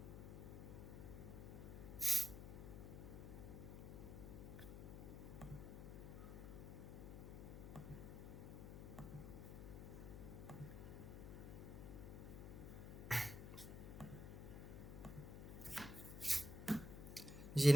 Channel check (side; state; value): left; noise; hum, 8 dB below the sound